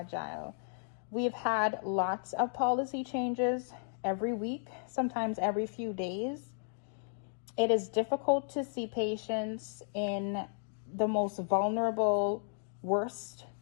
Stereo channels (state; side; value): silent; right; digital silence